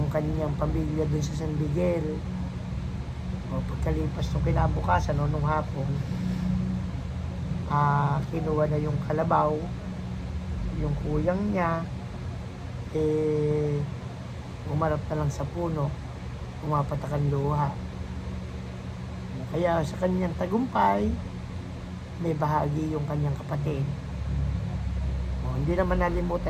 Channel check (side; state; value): both; identical; correlation 1.00